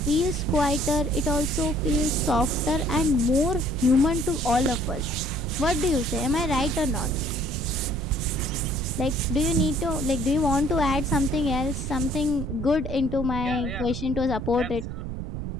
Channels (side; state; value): right; noise; rumble, 5 dB below the sound